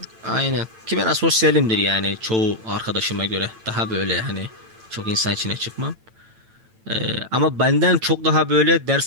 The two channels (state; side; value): late; left; 9.0 ms